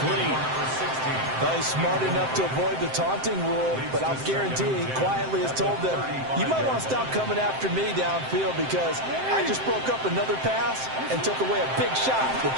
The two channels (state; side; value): late; left; 7.7 ms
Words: Well, he's smart enough to avoid the taunting rule, but I'll guarantee he quietly has told them, you might want to stop coming after me downfield because I just broke up another pass and took away a big shot that